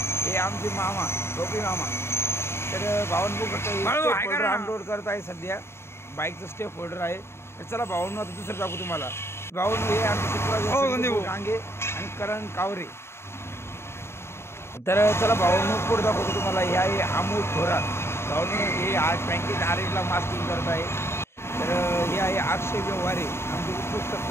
हे आमचे मामा टोपी मामा. तर भावनो बघू शकतो अनलोड करत आहे सध्या. बाईकचं स्टेप होल्डर आहे. तर चला भावनो आता दुसरं दाखवू तुम्हाला. भावनो हे आमचे चित्र डांगे आणि करण कावरे. तर चला भावनो पुढे दाखवतो तुम्हाला. हे आहे अमोल थोरात. भावनो हे आज बँकेत आरेला मास्किंग करत आहे. तर हे आहे अक्षय व्यवहारे आमचे उत्कृष्ट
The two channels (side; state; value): right; late; 0.12 ms